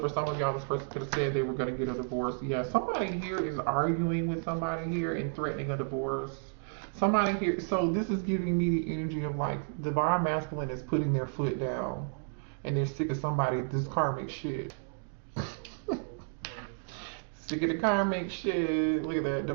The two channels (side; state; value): left; silent; digital silence